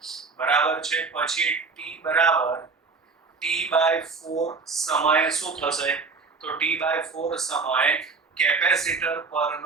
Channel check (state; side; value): quieter; left; 4.5 dB